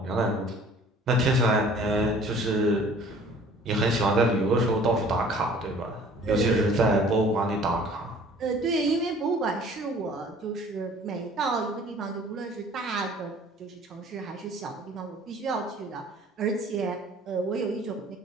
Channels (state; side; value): normal; both; correlation 0.51